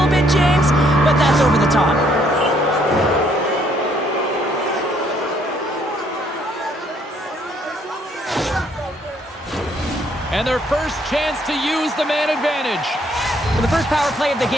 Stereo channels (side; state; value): both; normal; correlation 0.67